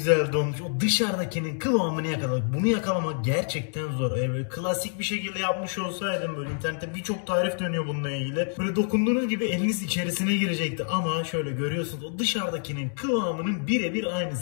donmuş. O dışarıdakinin kıvamını yakalamak. Bunu yakalamak gerçekten zor. Böyle klasik bir şekilde yapmış olsaydım, böyle internette birçok tarif dönüyor bununla ilgili. Böyle dokunduğunuz gibi eliniz içerisine girecekti. Ama şöyle görüyorsunuz, o dışarıdakinin kıvamının birebir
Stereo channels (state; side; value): silent; right; 60 dB below the other